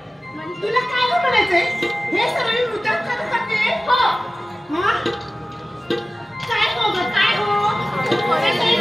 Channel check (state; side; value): normal; both; correlation 0.96